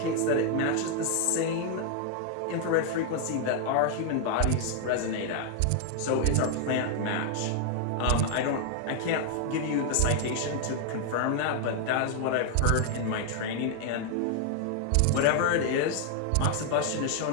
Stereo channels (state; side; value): different; both; correlation 0.00